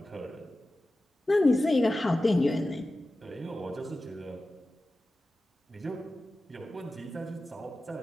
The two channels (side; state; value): both; normal; correlation 0.94